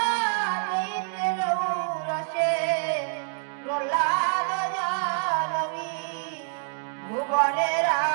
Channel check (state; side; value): silent; left; 60 dB below the other